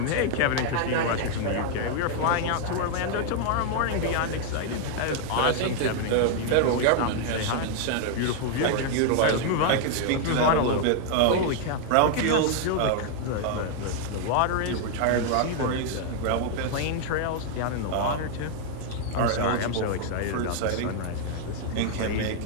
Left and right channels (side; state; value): both; different; correlation 0.00